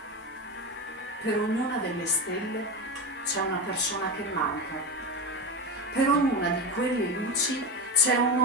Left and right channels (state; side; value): normal; both; correlation 0.18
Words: Per ognuna delle stelle c'è una persona che manca. Per ognuna di quelle luci c'è un